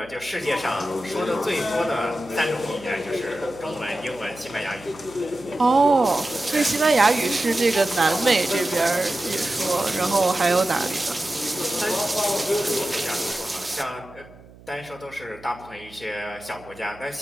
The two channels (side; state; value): right; noise; hum, 22 dB below the sound